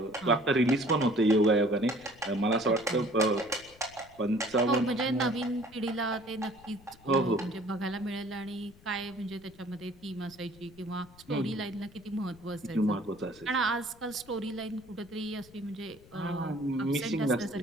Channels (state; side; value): noise; left; rumble, 24 dB below the sound